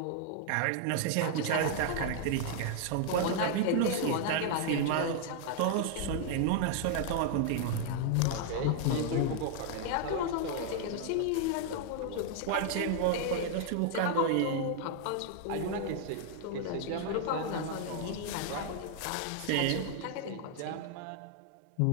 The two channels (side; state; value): both; different; correlation 0.00